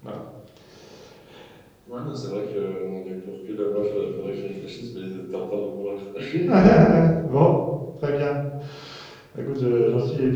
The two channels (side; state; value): both; identical; correlation 1.00